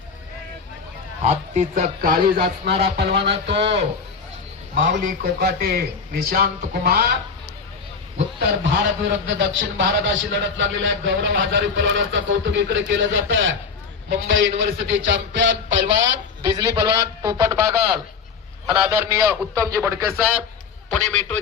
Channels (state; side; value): quieter; right; 5.5 dB